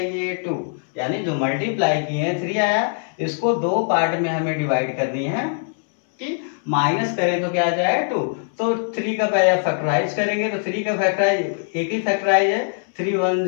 2। यानी जो मल्टीप्लाई किए 3 आया, इसको दो पार्ट में हमें डिवाइड करनी है कि माइनस करें तो क्या आ जाए, 2। तो 3 का पहले फैक्टराइज करेंगे। तो 3 का फैक्टराइज एक ही फैक्टराइज है, 3 1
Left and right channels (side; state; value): right; silent; 64 dB below the other